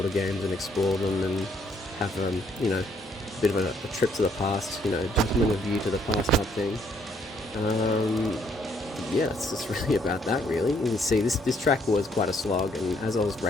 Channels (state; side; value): normal; both; correlation 0.68